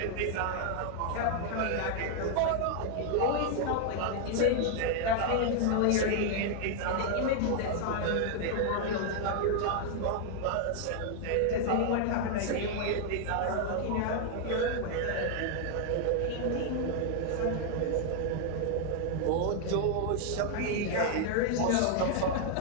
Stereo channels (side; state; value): both; different; correlation 0.00